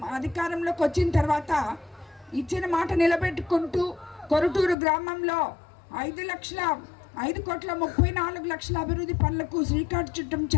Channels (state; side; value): drops out; right; at 4.8 s